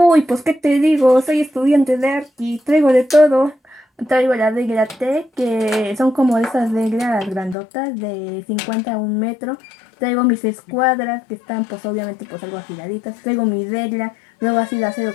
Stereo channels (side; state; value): right; drops out; at 7.6 s